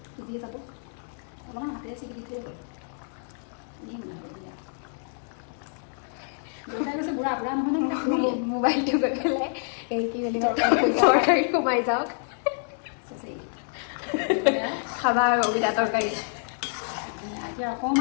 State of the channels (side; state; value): right; silent; digital silence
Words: সিজিয়ে যাব অলপমান হাতেৰে চিকি দি থৈ হ'ল দেউতাই কৈছে বুঢ়া বুঢ়া নহয় নে শুনিলে মোবাইলটো গৈ পেলাই এই কি বুলি তৰকাৰী সোমাই যাওক খাবা আৰু অবিদা তৰকাৰী এতিয়া